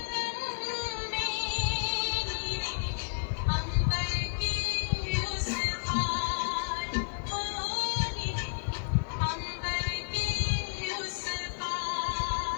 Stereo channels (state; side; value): silent; right; digital silence